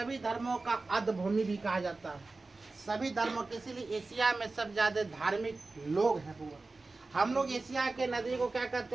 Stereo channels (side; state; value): left; quieter; 3.5 dB